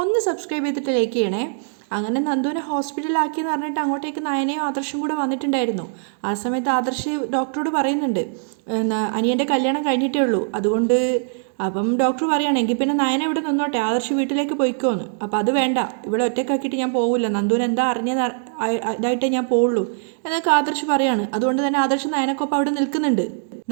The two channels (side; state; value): left; silent; digital silence